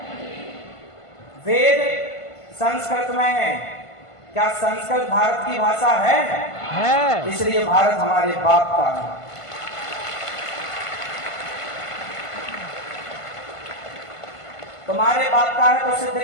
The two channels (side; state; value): right; late; 1.5 ms